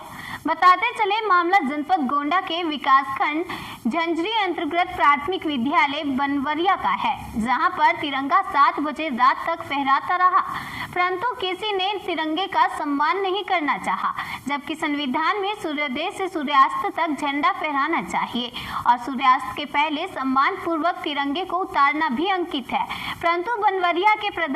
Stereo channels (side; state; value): both; identical; correlation 1.00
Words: बताते चले मामला जनपद गोंडा के विकासखंड झंझरी अंतर्गत प्राथमिक विद्यालय बनवरिया का है, जहां पर तिरंगा 7 बजे रात तक फहराता रहा, परंतु किसी ने तिरंगे का सम्मान नहीं करना चाहा, जबकि संविधान में सूर्योदय से सूर्यास्त तक झंडा फहराना चाहिए और सूर्यास्त के पहले सम्मान पूर्वक तिरंगे को उतारना भी अंकित है। परंतु बनवरिया के